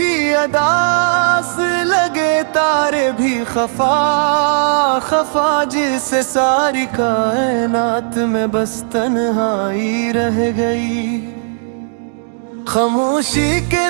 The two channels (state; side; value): silent; left; digital silence